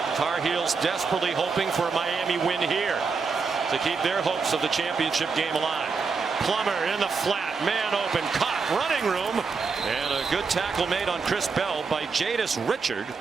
Tar Heels desperately hoping for a Miami win here to keep their hopes of the championship game alive. Plummer in the flat, man open, caught, running room, and a good tackle made on Chris Bell by Jadis Richard.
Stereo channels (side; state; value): left; quieter; 5.0 dB